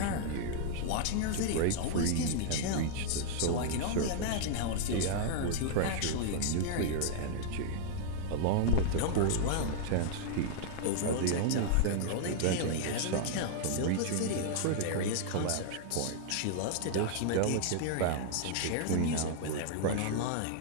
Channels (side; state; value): both; different; correlation -0.01